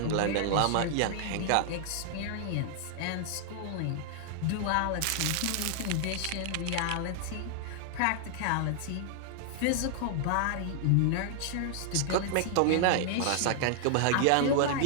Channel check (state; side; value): different; both; correlation -0.01